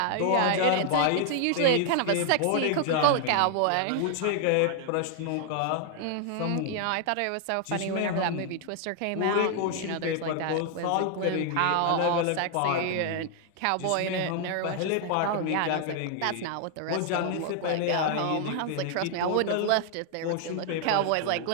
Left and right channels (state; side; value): different; both; correlation 0.00